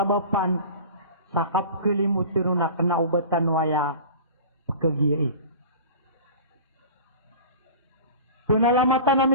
sa kapkalimutan na kanaubatan waya pagkagiyai. Pinalamatan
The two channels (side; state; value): both; inverted; correlation -0.37